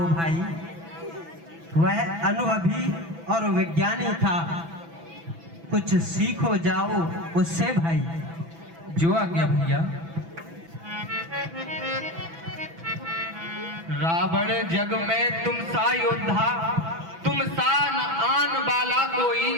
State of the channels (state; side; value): late; left; 6.0 ms